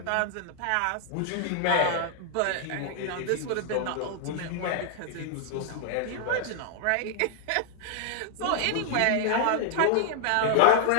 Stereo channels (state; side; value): different; both; correlation 0.00